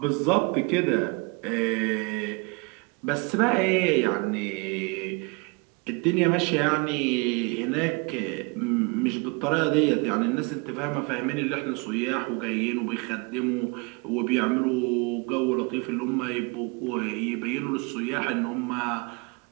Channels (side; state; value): left; quieter; 30.1 dB